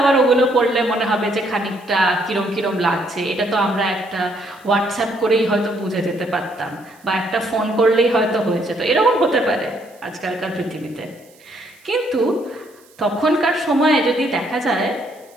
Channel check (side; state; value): right; noise; hiss, 29 dB below the sound